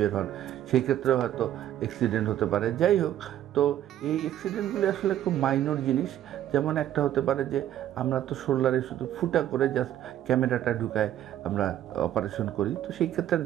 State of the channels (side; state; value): left; quieter; 11.9 dB